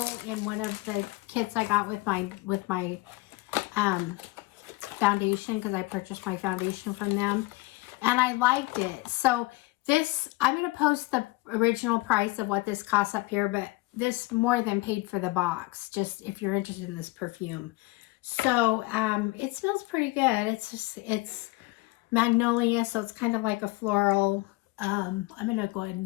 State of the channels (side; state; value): right; quieter; 22.0 dB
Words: in one of the kits I got with my foundation, because I purchased my foundation from them, and I liked it. So this, I'm going to post the original price of what this costs up here, but this more than paid for the box, just if you're interested in this perfume. So it smells pretty good. It's magnolia, so it's kind of like a floral. I'm gonna go ahead